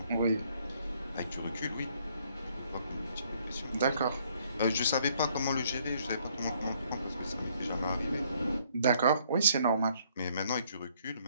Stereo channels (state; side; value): inverted; both; correlation -0.66